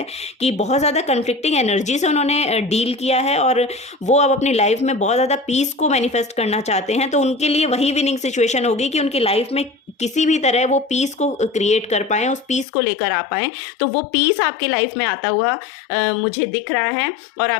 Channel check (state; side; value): drops out; right; at 12.7 s